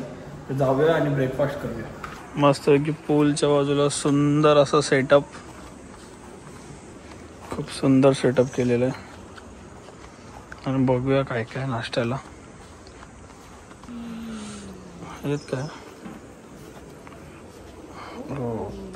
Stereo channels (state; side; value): identical; both; correlation 1.00